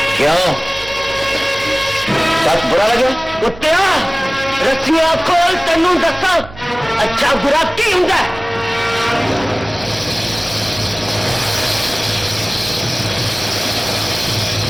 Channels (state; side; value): noise; right; hum, 17 dB below the sound